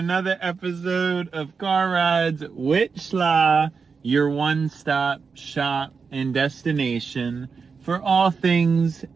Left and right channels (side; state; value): left; quieter; 5.3 dB